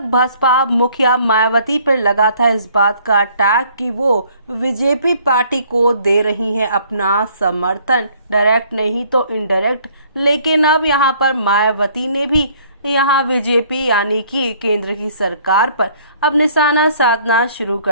बसपा मुखिया मायावती पर लगा था इस बात का टैग कि वो बीजेपी पार्टी को दे रही हैं अपना समर्थन, डायरेक्ट नहीं तो इनडायरेक्ट। लेकिन अब यहां पर मायावती ने भी यहां बीजेपी यानी कि केंद्र की सरकार पर अब निशाना साधना शुरू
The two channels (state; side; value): inverted; both; correlation -0.60